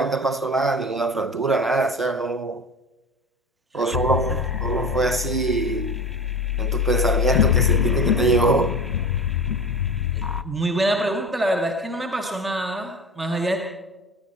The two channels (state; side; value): normal; both; correlation 0.33